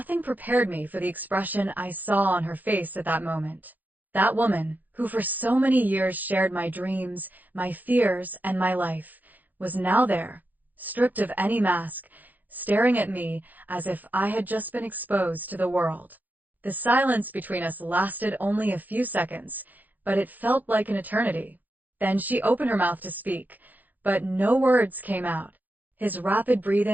prepared me for the expression I saw on her face at that moment. That woman, who for so many years shared my dreams, my fears, and my life, was now there, stripped of any mask, staring at me as if I had just been exposed to the world. The silence between us lasted only a few seconds, but it felt like an eternity. Then she opened her mouth to speak, but no words came out. His rapid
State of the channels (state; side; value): late; left; 0.084 ms